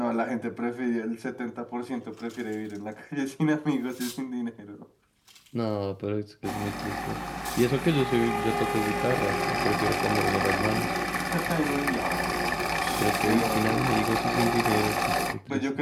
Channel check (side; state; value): both; identical; correlation 1.00